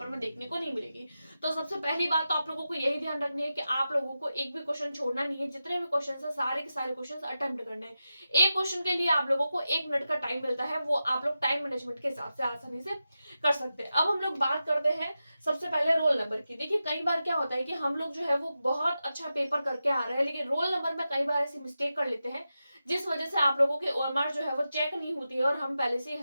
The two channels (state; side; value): inverted; both; correlation -0.91